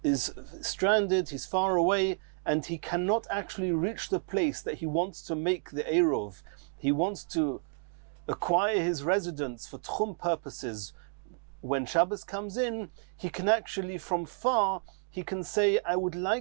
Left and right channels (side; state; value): left; silent; 57 dB below the other